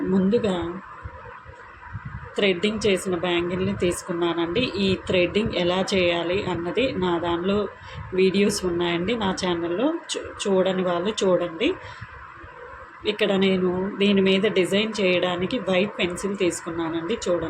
ముందుగా థ్రెడ్డింగ్ చేసిన బ్యాంగిల్ని తీసుకున్నానండి. ఈ థ్రెడ్డింగ్ ఎలా చేయాలి అన్నది నా దానిలో వీడియోస్ ఉన్నాయండి నా ఛానల్లో. చూడని వాళ్ళు చూడండి. ఇక్కడ నేను దీని మీద డిజైన్ చేయడానికి వైట్ పెన్సిల్ తీసుకున్నానండి.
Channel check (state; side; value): identical; both; correlation 1.00